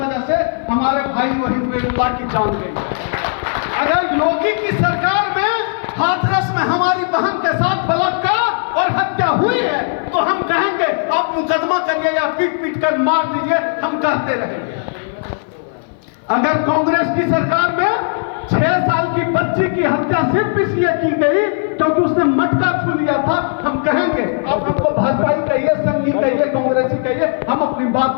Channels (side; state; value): right; silent; 55 dB below the other